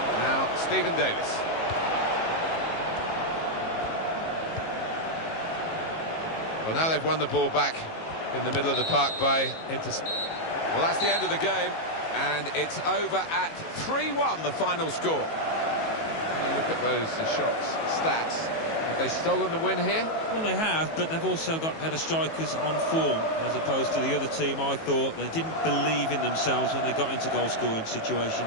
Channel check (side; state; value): right; late; 18 ms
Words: Now Stephen Davis. Well, now they've won the ball back in the middle of the park by Well, that's the end of the game, and it's over at 3-1, the final score. When you look at those shots, stats, have they stolen the win here? Well, they have, but they've also got better strikers on form, as opposed to the other team. I thought they didn't believe in themselves when they got into goal-scoring